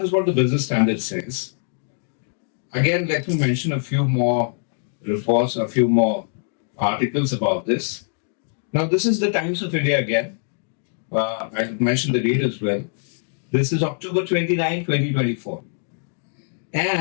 is what the Business Standard says. Again, let me mention a few more reports, a few more articles about this. Now, this is the Times of India again. I mentioned the date as well. This is October 29, 2024.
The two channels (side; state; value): right; silent; digital silence